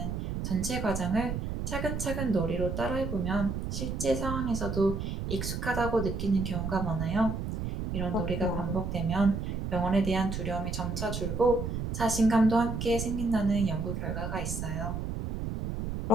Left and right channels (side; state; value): right; noise; rumble, 4 dB below the sound